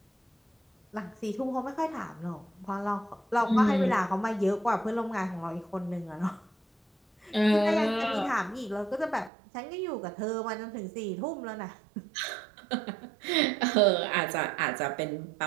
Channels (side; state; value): left; drops out; at 9.3 s